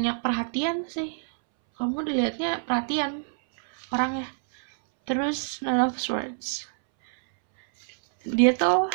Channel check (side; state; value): left; silent; 61 dB below the other